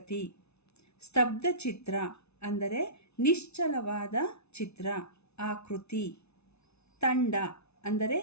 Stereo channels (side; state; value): right; late; 0.80 ms